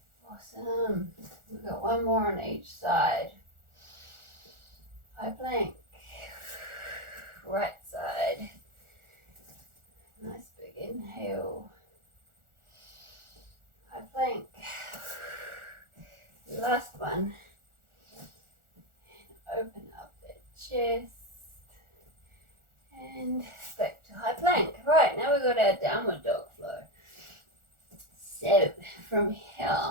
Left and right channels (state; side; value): late; left; 1.4 ms